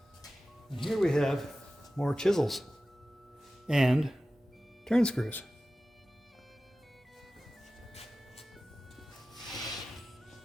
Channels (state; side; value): normal; both; correlation 0.95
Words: And here we have more chisels and turn screws.